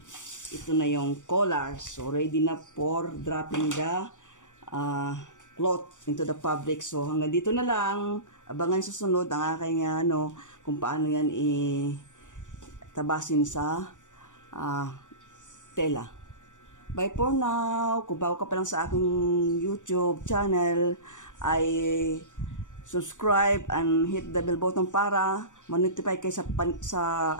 Ito na yung collar. So, ready na for dropping the cloth into the fabric. So, hanggang dito na lang. Abangan susunod ang aking kung paano yan tabasin sa tela. Bye for now. Kung bago ka pa lang sa aking YouTube channel, ay subscribe and hit the bell button para ma-notify kayo sa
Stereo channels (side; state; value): right; late; 0.86 ms